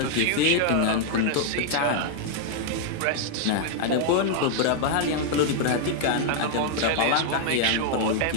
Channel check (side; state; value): both; different; correlation -0.01